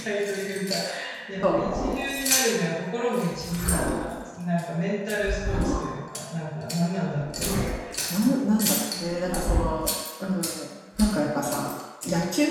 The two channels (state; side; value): identical; both; correlation 1.00